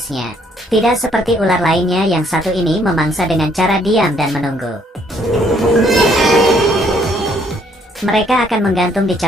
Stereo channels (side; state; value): both; normal; correlation 0.66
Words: Tidak seperti ular lainnya yang satu ini memangsa dengan cara diam dan menunggu. Mereka akan menggantung di